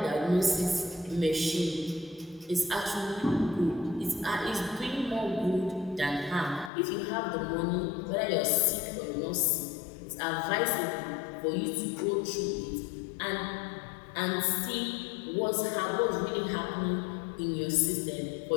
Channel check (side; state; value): right; drops out; at 6.7 s